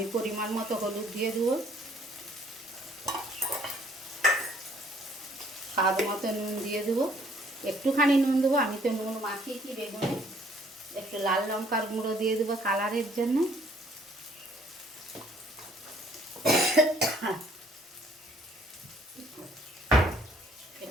পরিমাণ মতো হলুদ দিয়ে দেবো, স্বাদ মতো নুন দিয়ে দেবো, একটুখানি নুন দেবো, আমি তো নুন মাখিয়েছি বেগুনে। একটু লাল লঙ্কার গুঁড়ো দিয়ে দেবো কালারের জন্য।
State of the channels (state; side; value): normal; both; correlation 0.61